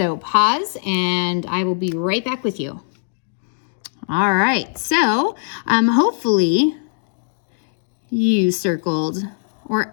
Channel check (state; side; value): silent; right; digital silence